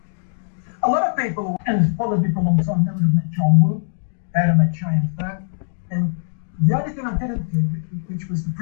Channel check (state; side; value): silent; right; digital silence